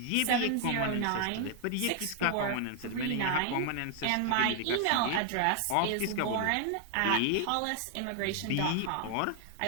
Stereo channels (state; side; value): different; both; correlation 0.00